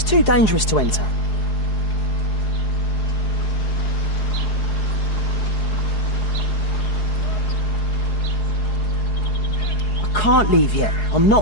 too dangerous to enter. I can't leave yet. I'm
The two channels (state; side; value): late; right; 4.7 ms